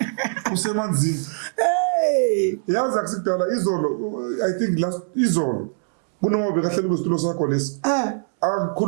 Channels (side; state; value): left; silent; 64 dB below the other